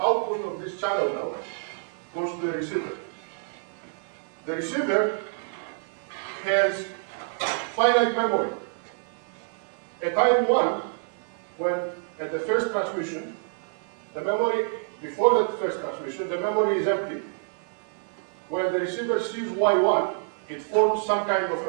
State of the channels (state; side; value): silent; left; digital silence